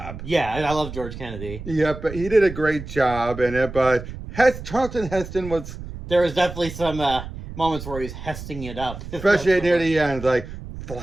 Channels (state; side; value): noise; right; rumble, 11 dB below the sound